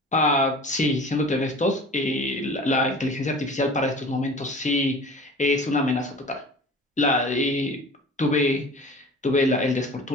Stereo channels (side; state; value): both; normal; correlation 0.41